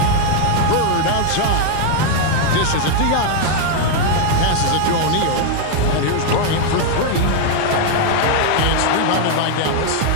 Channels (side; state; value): both; different; correlation 0.00